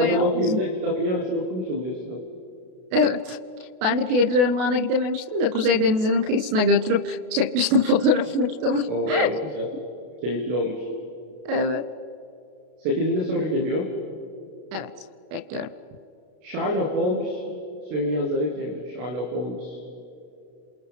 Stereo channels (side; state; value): left; late; 33 ms